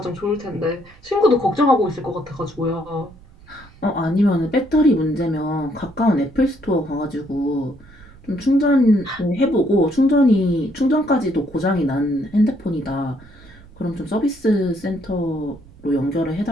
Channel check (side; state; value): right; noise; rumble, 23 dB below the sound